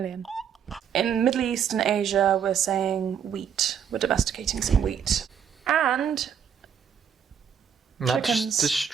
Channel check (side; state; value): left; quieter; 7.9 dB